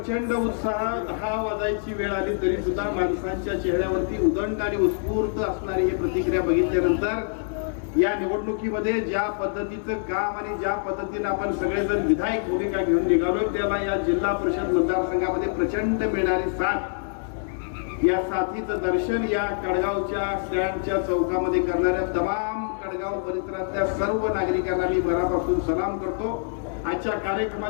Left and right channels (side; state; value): right; silent; digital silence